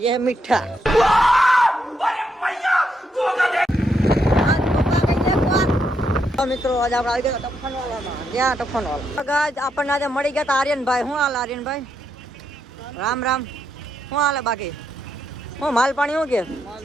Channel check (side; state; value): both; normal; correlation 0.79